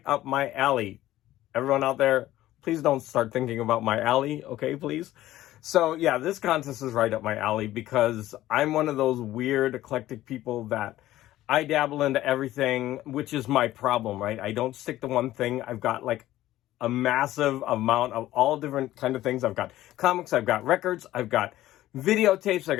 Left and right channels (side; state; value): right; quieter; 14.8 dB